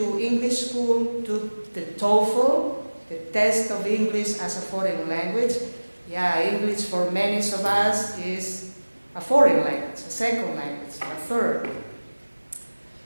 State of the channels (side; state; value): both; inverted; correlation -1.00